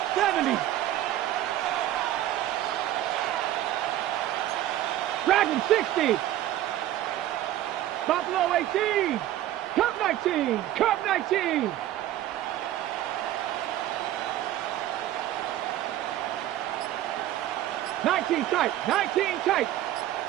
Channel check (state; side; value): quieter; left; 13.4 dB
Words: 70. Dragon 60. Buffalo 18. Cup 19. Cup 19. Tight. 19 tight.